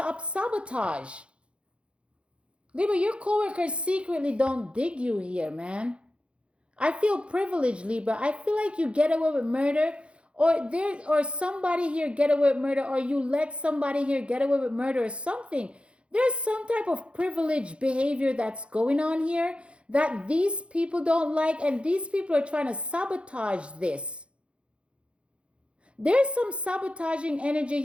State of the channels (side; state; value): left; late; 0.059 ms